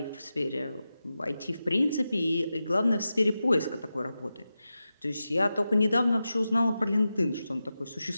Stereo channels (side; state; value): both; inverted; correlation -0.92